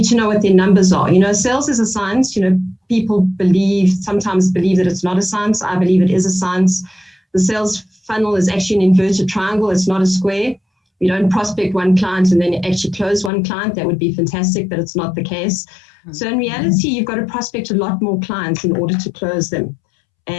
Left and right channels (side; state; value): right; drops out; at 13.3 s